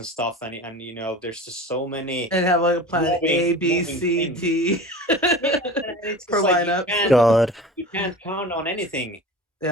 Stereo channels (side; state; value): both; normal; correlation 0.35